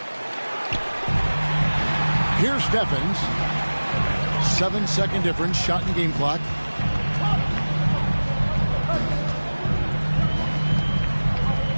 Here's Steffens. 7-second difference. Shot and game clock.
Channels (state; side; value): inverted; both; correlation -1.00